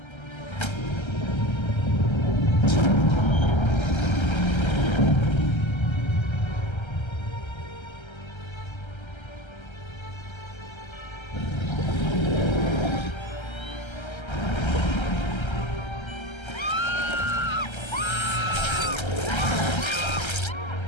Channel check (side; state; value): right; late; 1.3 ms